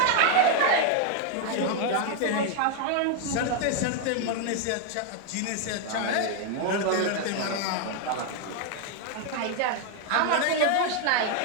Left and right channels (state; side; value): different; both; correlation 0.00